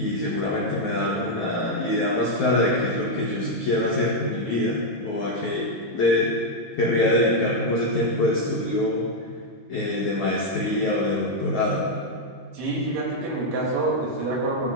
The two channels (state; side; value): normal; both; correlation -0.01